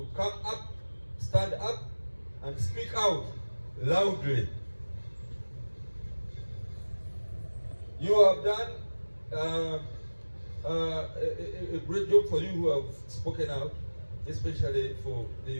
come up, stand up, and speak out loudly. You have done a great job for you who have spoken out, especially for the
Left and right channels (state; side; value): inverted; both; correlation -1.00